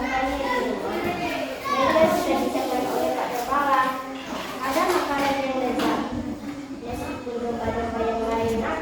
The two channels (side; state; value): both; identical; correlation 1.00